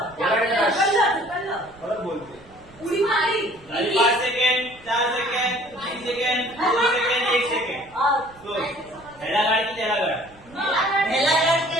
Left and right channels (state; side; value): noise; right; rumble, 25 dB below the sound